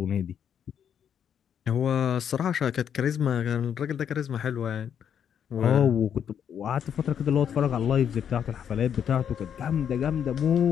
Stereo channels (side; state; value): right; quieter; 8.5 dB